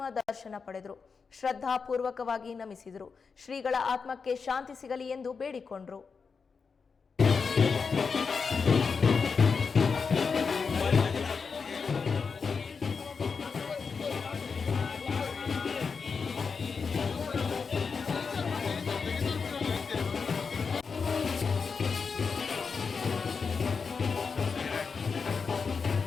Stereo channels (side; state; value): right; quieter; 5.3 dB